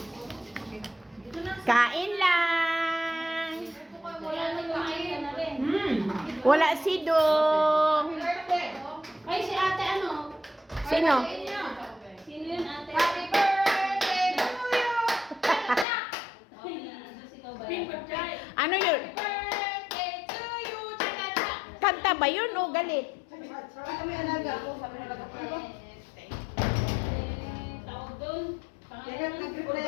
Kain lang. Wala na kumain na rin. Wala si Dong. Ay, si ate, Sino? Sino yun, ate? Happy birthday to you! Ano yun? Birthday to you! Cha-cha-cha! Kanta ba yun o galit? Kami alaga ako, sabi na alaga ko. Tawag doon. Kaya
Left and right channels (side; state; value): right; drops out; at 15.9 s